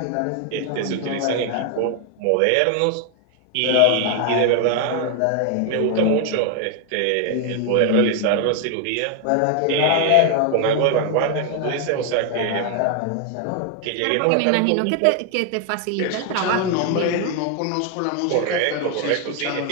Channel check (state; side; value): different; both; correlation 0.00